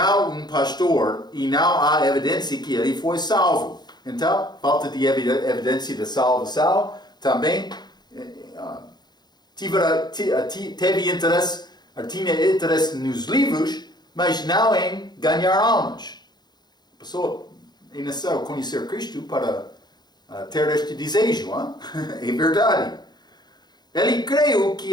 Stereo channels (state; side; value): late; right; 0.20 ms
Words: um pastor, e não há evidência que ele foi salvo. Então, falta de evidência da salvação, também tinha interesse nos livros, mas não em ganhar almas. A pessoa nasceu conhecer Cristo para ter este desejo, é verdade. Ele creu